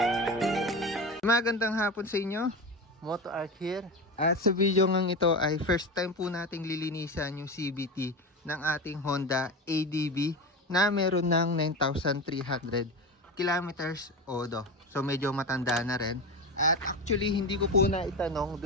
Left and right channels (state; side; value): normal; both; correlation 0.23